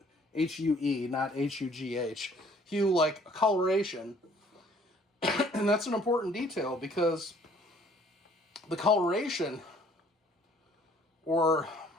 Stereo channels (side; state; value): both; normal; correlation 0.58